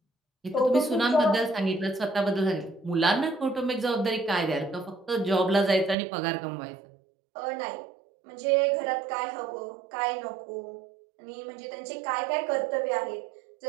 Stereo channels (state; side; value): drops out; left; at 6.0 s